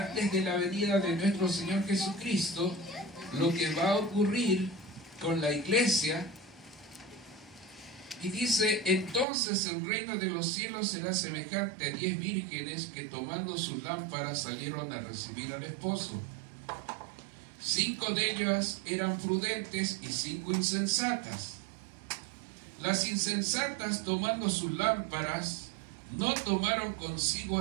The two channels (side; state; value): left; drops out; at 9.2 s